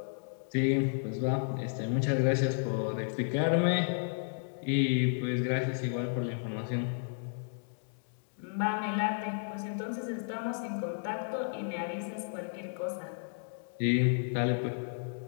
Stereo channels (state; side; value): silent; right; digital silence